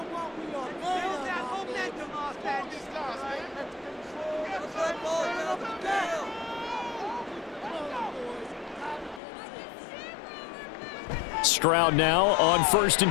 Stroud now on 1st and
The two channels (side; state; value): right; drops out; at 9.2 s